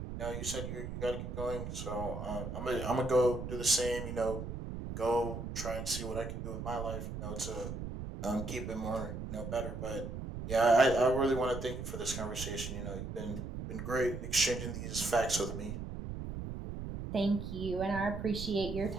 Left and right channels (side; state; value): right; noise; rumble, 6 dB below the sound